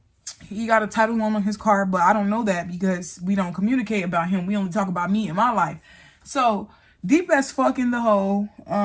he got a title loan on his car, but I don't know that because we don't communicate about him. We only talk about me and my life. So deep as fuck in the hole.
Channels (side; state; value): both; identical; correlation 1.00